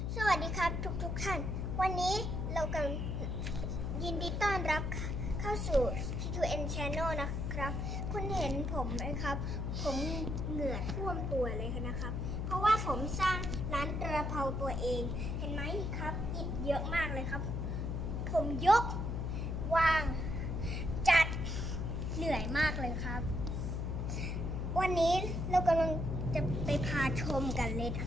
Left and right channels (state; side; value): noise; left; hum, 1 dB below the sound